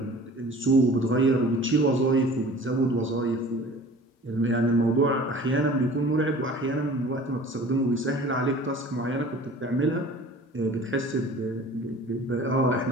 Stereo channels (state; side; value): normal; both; correlation 0.45